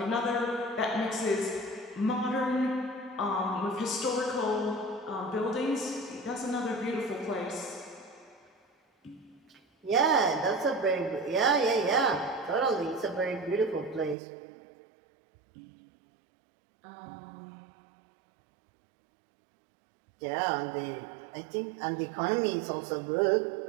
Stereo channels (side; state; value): left; drops out; at 14.2 s